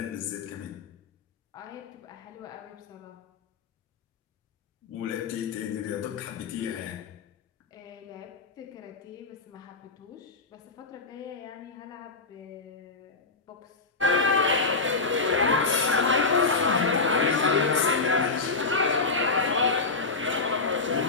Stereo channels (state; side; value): quieter; right; 4.0 dB